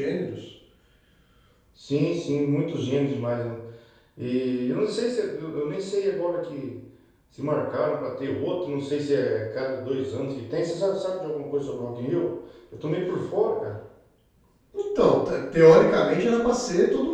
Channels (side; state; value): both; identical; correlation 1.00